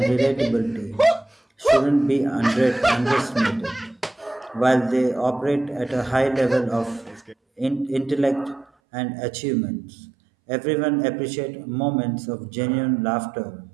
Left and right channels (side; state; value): left; drops out; at 8.7 s